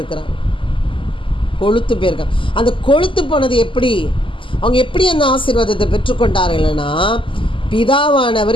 அந்த கொழுத்து போனது எப்படி, அவங்க எப்படி அந்த ஆசீர்வாதத்தை பெற்றுக்கொண்டார்கள்னா,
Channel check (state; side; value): late; right; 0.25 ms